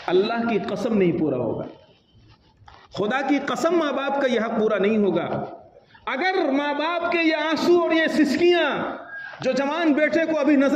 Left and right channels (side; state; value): both; identical; correlation 1.00